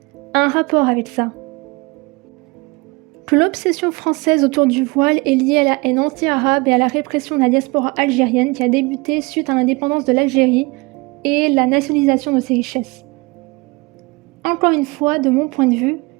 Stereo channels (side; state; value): left; quieter; 25.8 dB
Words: a un rapport avec ça. Que l'obsession française autour du voile est liée à la haine anti-arabe et à la répression de la diaspora algérienne qui a débuté suite à l'indépendance de l'Algérie et la nationalisation de ses richesses. Encore une fois, de mon point de vue,